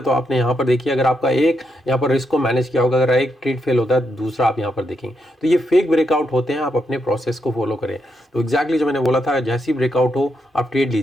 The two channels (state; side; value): normal; both; correlation 0.81